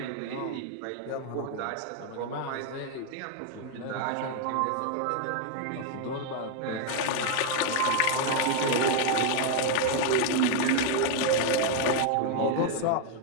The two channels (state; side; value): different; both; correlation 0.00